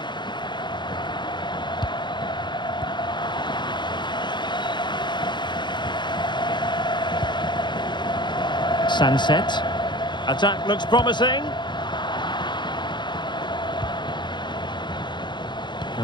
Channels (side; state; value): right; late; 0.22 ms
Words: Sunset. Attack looks promising.